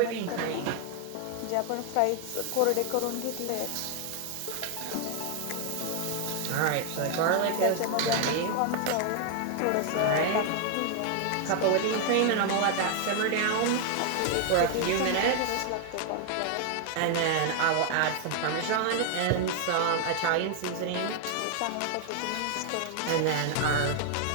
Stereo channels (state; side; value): different; both; correlation 0.00